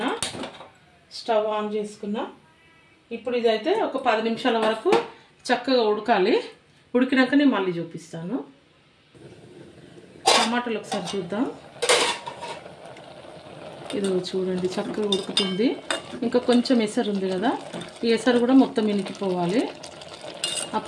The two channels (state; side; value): identical; both; correlation 1.00